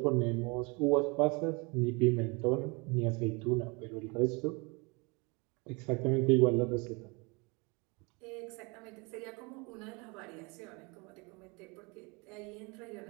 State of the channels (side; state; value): left; quieter; 29.1 dB